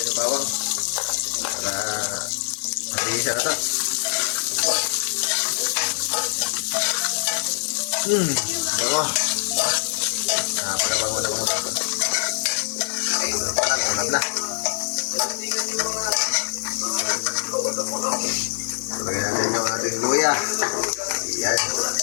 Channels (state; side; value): silent; right; digital silence